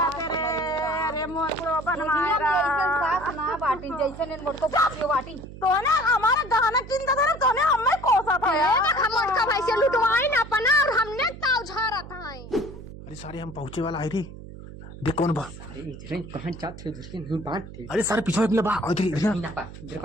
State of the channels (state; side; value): noise; right; hum, 14 dB below the sound